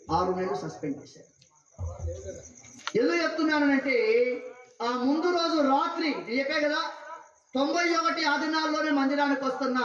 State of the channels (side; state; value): both; identical; correlation 1.00